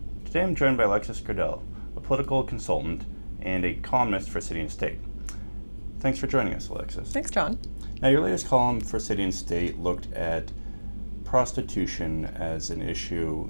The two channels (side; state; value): both; inverted; correlation -1.00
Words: Today I'm joined by Alexis Grenell, a political consultant and a columnist for City and State. Thanks for joining us, Alexis. Thanks, John. Now, your latest column for City and State looked at prostitution as an issue